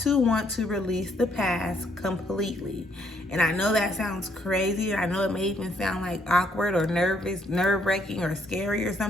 to want to release the past completely. And I know that sounds crazy. I know it may even sound like awkward or nervous, nerve-wracking or scary or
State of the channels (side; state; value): both; normal; correlation 0.70